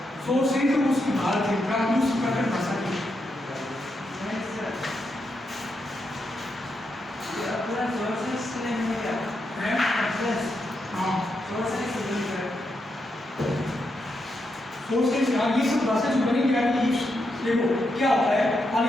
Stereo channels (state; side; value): normal; both; correlation 0.83